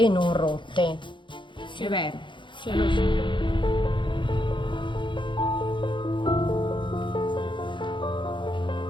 non rotte. È vero. Sì.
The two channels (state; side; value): late; right; 0.23 ms